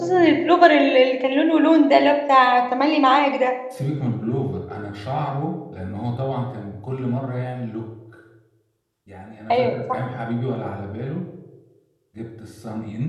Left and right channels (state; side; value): identical; both; correlation 1.00